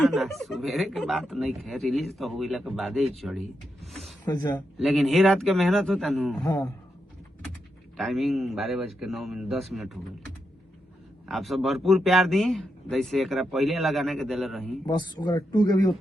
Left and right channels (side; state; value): both; normal; correlation 0.84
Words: सवेरे के बात नहीं है, रिलीज तो हुई के बाद ही चढ़ी। अच्छा, लेकिन ही रात के मेहनत होता नु। हाँ, टाइमिंग 12:09 हो गई। आप सब भरपूर प्यार दी, जैसे एकरा पहले लगाने के दिले रही, बस ओकरा 2 के भी